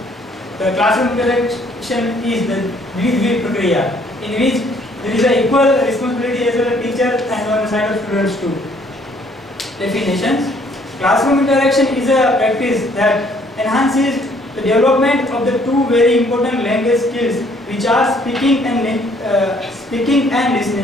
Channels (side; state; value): both; normal; correlation 0.63